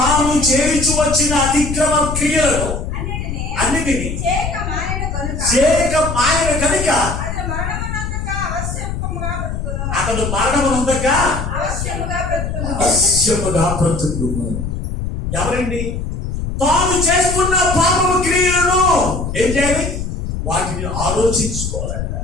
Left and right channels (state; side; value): noise; left; rumble, 4 dB below the sound